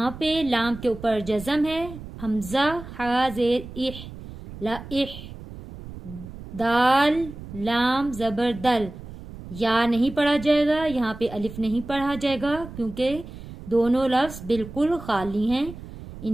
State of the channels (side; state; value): right; noise; rumble, 13 dB below the sound